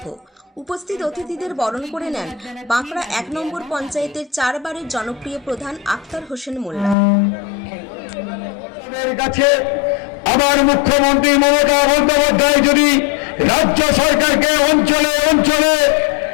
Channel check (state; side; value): drops out; right; at 7.0 s